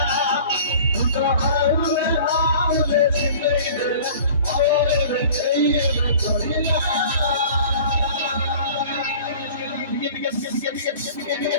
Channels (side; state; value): both; inverted; correlation -0.44